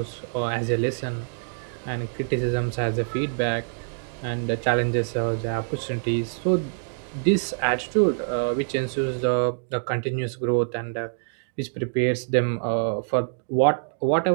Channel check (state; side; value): silent; left; digital silence